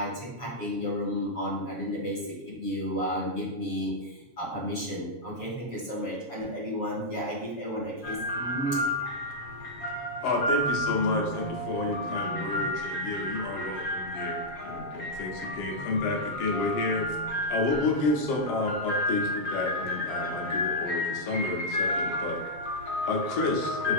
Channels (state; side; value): late; right; 7.2 ms